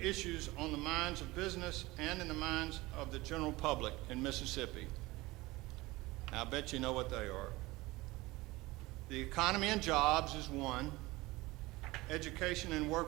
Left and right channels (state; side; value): quieter; left; 20.6 dB